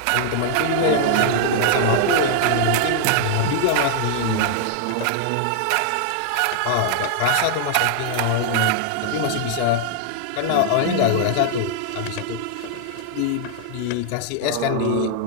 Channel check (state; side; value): different; both; correlation 0.00